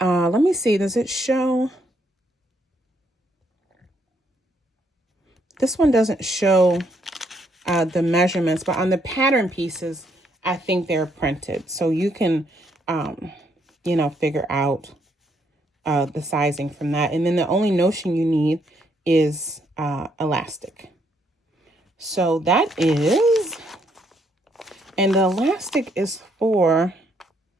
me see, does it show? This one doesn't show the measurements, but on the pattern pieces, I think they're printed. So you can, figure out the sizing from that. And then the only notion you need is elastic. So that is, and the elastic is for,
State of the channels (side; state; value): both; normal; correlation 0.72